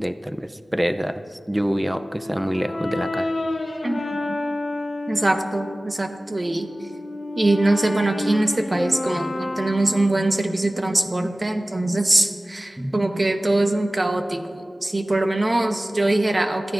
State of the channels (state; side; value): normal; both; correlation 0.97